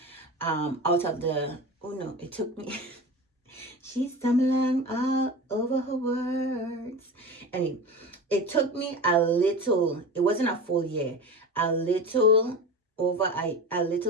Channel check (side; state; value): both; normal; correlation 0.30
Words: out of the, oh no, it took me she's stumbling all over her words. Anyway, it took me a little, it wasn't a full year, a little a